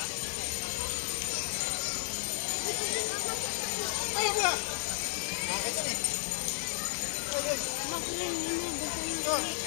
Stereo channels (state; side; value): silent; right; digital silence